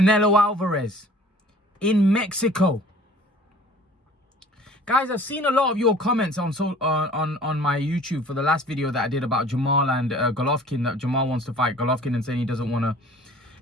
Alvarez in Mexico. Guys, I've seen a lot of your comments on my YouTube for the last video that I did about Jermall and Golovkin, that Jermall wants to fight Golovkin and saying he doesn't want to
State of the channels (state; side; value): normal; both; correlation 0.49